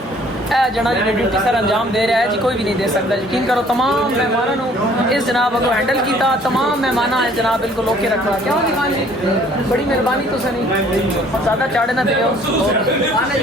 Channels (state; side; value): normal; both; correlation 0.57